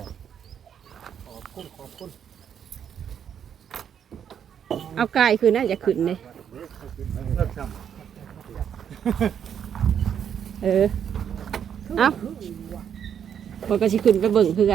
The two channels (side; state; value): left; quieter; 8.5 dB